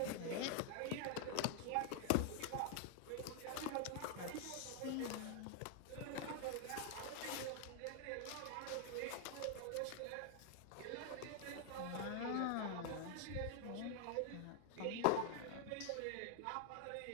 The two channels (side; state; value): both; different; correlation 0.00